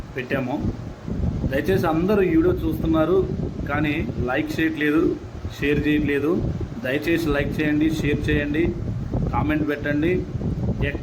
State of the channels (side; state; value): both; identical; correlation 1.00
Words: పెట్టాము. దయచేసి అందరూ ఈ వీడియో చూస్తున్నారు కానీ లైక్ చేయట్లేదు, షేర్ చేయట్లేదు. దయచేసి లైక్ చేయండి, షేర్ చేయండి, కామెంట్ పెట్టండి.